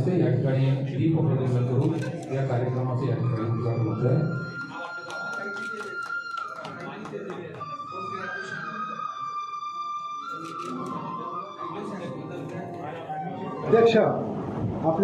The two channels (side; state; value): both; identical; correlation 1.00